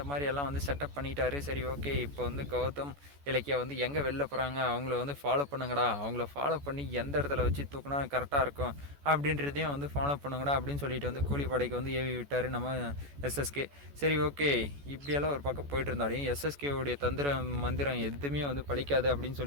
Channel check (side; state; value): left; late; 14 ms